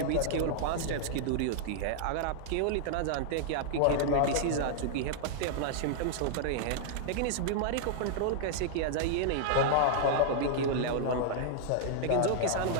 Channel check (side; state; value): both; different; correlation -0.01